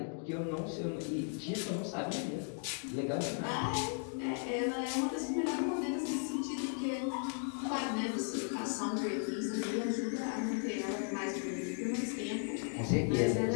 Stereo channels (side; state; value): right; silent; 54 dB below the other